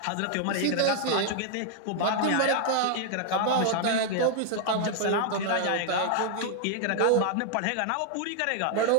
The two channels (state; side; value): different; both; correlation 0.00